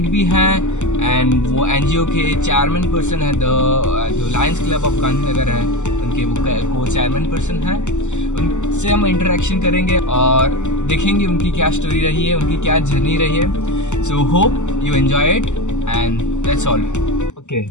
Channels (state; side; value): late; right; 0.84 ms